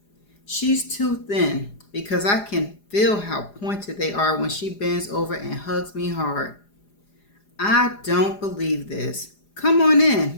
She's too thin because I can feel how pointed they are when she bends over and hugs me hard. I don't believe this. Come on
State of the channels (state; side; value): late; right; 4.9 ms